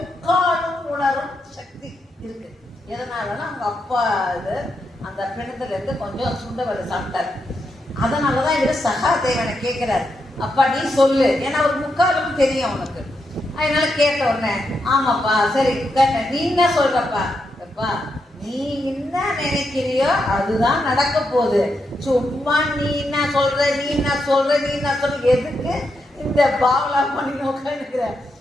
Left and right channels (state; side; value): normal; both; correlation 0.83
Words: உணரும் சக்தி இருக்கு. எதனாலன்னா அவங்க அப்பா அந்த பிணத்துல இருந்து கொஞ்சம் சுண்டவரை சாப்பிட்டாரு. அதனாலதான் இவர் சகாதேவனை கேட்கிறாரு, அப்பா நீ சொல்லு, ஏன்னா ஒரு முக்காலும் தெரியும் அவனுக்கு. அதனால கேட்ட உடனே, ஆமாப்பா சரி கேட்ட, நீ என்ன சொல்றப்பா? எப்பா நீ என்ன நினைக்கிறியோ அதுதான் நடக்க போகுது, சும்மா நீ என்ன சொல்ற எதுக்கு இந்த பாவலா பண்ணி நோக்கிற?